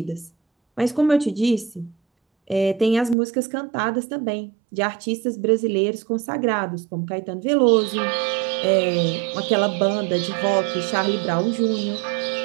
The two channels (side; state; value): left; drops out; at 3.2 s